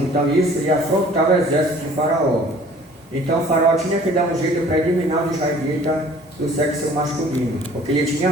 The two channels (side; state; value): both; normal; correlation 0.51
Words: então isso ia afrontar o exército de faraó. Então faraó tinha que dar um jeito para eliminar os israelitas do sexo masculino, porque ele tinha